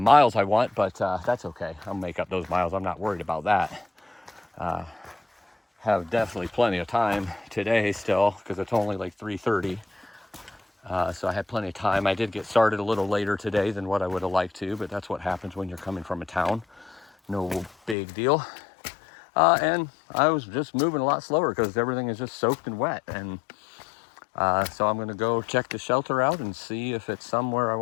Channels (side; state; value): right; drops out; at 17.9 s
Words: miles I want, but that's okay. I'll make up those miles. I'm not worried about that. Have definitely plenty of time today still, because it's only like 3:30. So I had plenty of time. I did get started a little later today than what I would have liked to, but that's what happens when you're coming from a town. No big deal. And I was just moving a lot slower because everything is just soaked and wet. And so I'm going to go check the shelter out and see if it's somewhere I